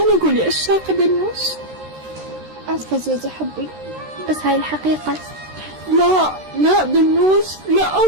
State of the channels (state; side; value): late; left; 13 ms